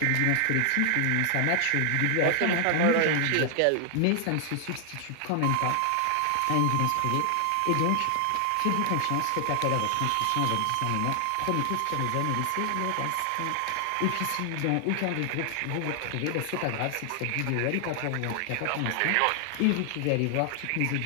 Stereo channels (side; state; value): both; different; correlation 0.00